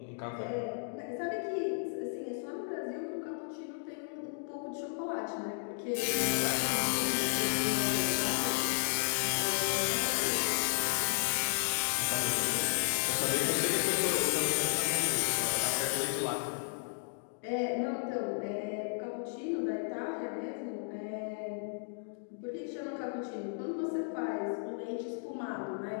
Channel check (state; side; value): silent; right; digital silence